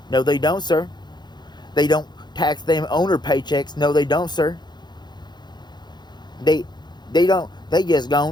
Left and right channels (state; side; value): late; right; 0.21 ms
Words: No, they don't, sir. They don't tax them owner paychecks. No, they don't, sir. They just